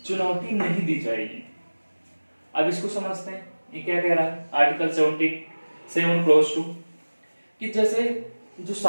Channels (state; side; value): inverted; both; correlation -1.00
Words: चुनौती नहीं दी जाएगी। अब इसको समझते हैं, ये क्या कह रहा है आर्टिकल 77 क्लॉज 2 कि जैसे जो